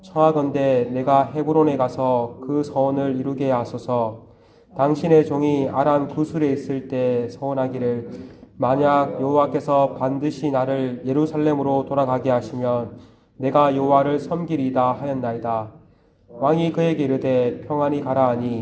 청하건대 내가 헤브론에 가서 그 서원을 이루게 하소서. 당신의 종이 아람 구술에 있을 때 서원하기를 만약 여호와께서 반드시 나를 예루살렘으로 돌아가게 하시면 내가 여호와를 섬기리이다 하였나이다. 왕이 그에게 이르되 평안히 가라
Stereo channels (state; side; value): identical; both; correlation 1.00